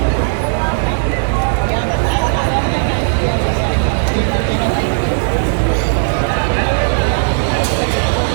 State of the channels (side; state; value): left; silent; digital silence